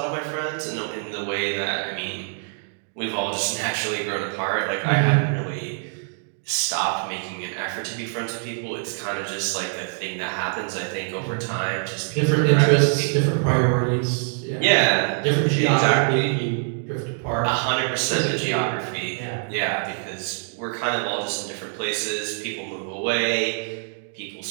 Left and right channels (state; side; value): silent; left; 62 dB below the other